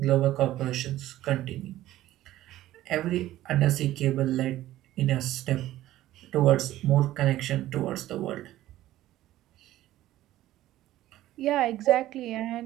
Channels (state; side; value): quieter; left; 14.6 dB